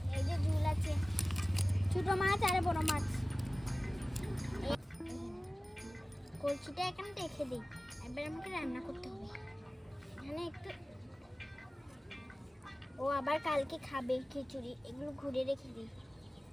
এই যে ঝুল আছে, ছোট মাছ আর বড় মাছ। কলসিটা এখানে রেখে দিই, এবার আমাকে রান্না করতে হবে। এখানে একটু, ও আবার কালকে খাবে খিচুড়ি, এগুলো ঘুরে রেখে দিই।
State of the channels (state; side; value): normal; both; correlation 0.97